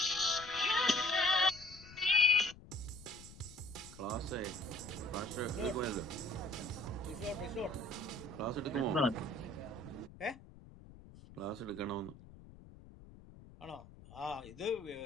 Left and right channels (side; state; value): left; noise; rumble, 18 dB below the sound